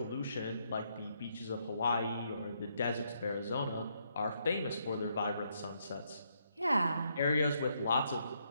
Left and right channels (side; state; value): both; inverted; correlation -0.75